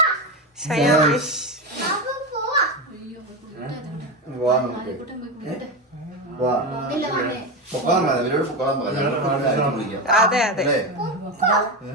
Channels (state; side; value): normal; both; correlation 0.16